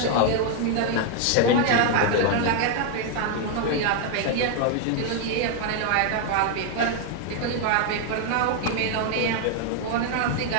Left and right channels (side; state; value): both; different; correlation 0.00